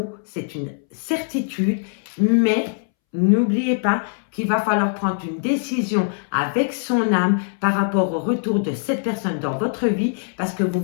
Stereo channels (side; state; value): right; silent; 64 dB below the other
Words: c'est une certitude. Mais n'oubliez pas qu'il va falloir prendre une décision avec son âme par rapport au retour de cette personne dans votre vie parce que vous